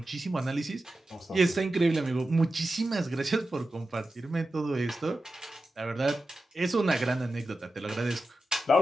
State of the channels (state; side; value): normal; both; correlation 0.92